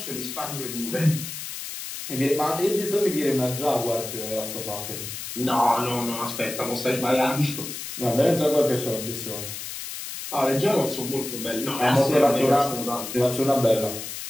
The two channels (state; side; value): noise; left; hiss, 8 dB below the sound